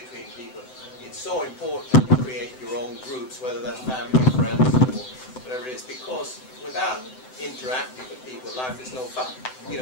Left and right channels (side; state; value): right; late; 7.8 ms